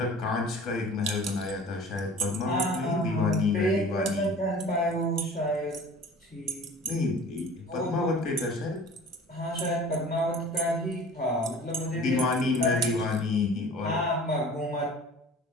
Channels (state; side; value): normal; both; correlation 0.45